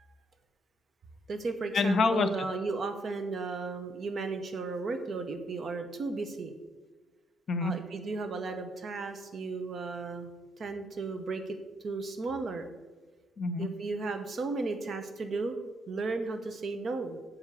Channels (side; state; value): both; normal; correlation 0.74